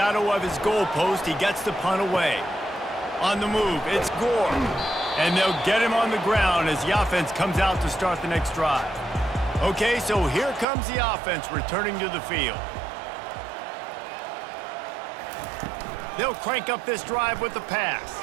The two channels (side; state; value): left; drops out; at 10.7 s